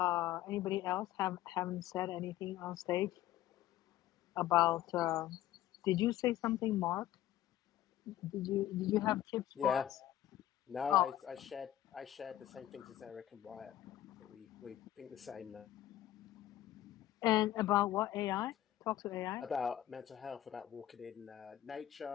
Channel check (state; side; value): quieter; right; 13.1 dB